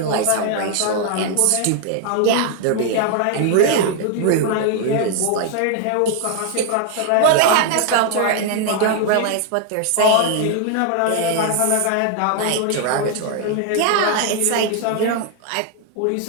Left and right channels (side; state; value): both; different; correlation 0.00